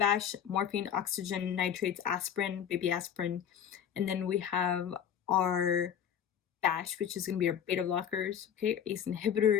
morphine, oxygen, nitrates, aspirin, baby aspirin. And then we have our BASH, which is going to be our beta blockers, okay, ACE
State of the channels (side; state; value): right; quieter; 9.0 dB